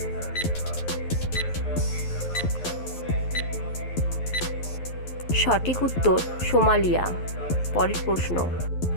সঠিক উত্তর সোমালিয়া। পরের প্রশ্ন,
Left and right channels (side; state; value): right; late; 11 ms